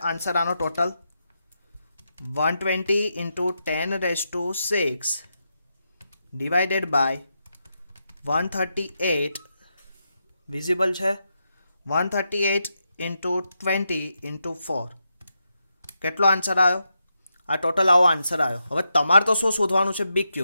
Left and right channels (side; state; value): both; inverted; correlation -0.85